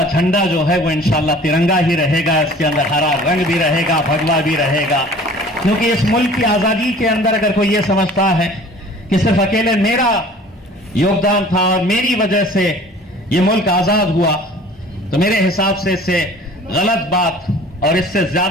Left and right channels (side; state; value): both; normal; correlation 0.47